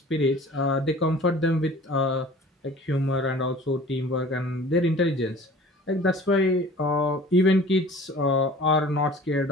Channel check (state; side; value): normal; both; correlation 0.45